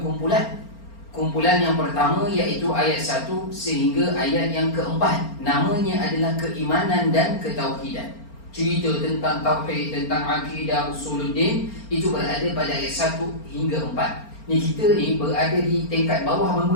kumpulan. Kumpulan yang pertama iaitu ayat 1 sehingga ayat yang ke-4. Namanya adalah keimanan dan ketauhidan. Cerita tentang tauhid, tentang akidah, usuluddin, itu berada pada ayat 1 hingga 4. Ni kita ni berada di tingkat bawah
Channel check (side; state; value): right; late; 4.4 ms